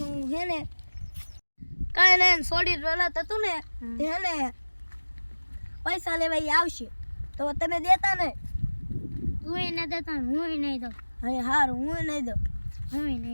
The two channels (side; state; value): both; inverted; correlation -1.00